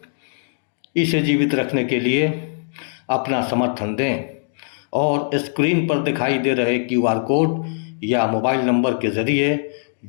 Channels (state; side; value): silent; right; digital silence